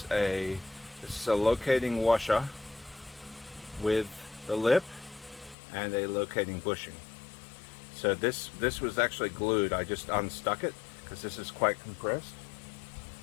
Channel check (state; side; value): drops out; right; at 5.6 s